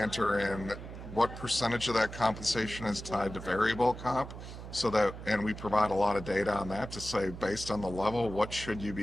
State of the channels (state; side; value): noise; right; hum, 11 dB below the sound